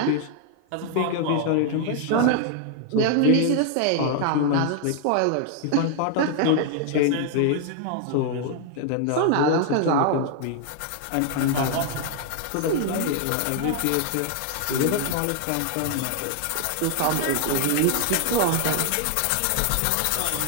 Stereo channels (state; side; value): different; both; correlation 0.00